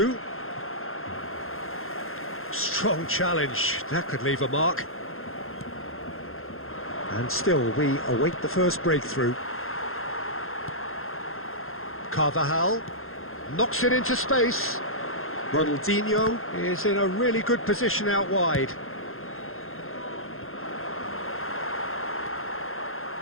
Strong challenge. That could leave a mark. And still, we await the first breakthrough. Carvajal knocks it into space. Ronaldinho is in a really good position out wide.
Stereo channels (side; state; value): right; late; 0.61 ms